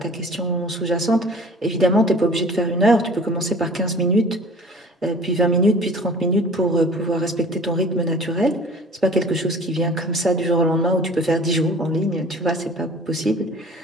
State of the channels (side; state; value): both; normal; correlation 0.46